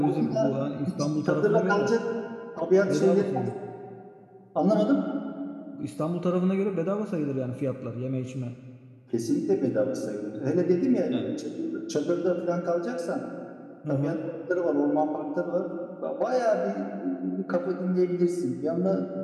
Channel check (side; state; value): both; identical; correlation 1.00